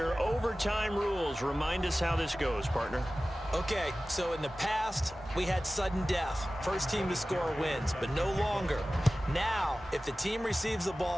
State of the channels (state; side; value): normal; both; correlation 0.96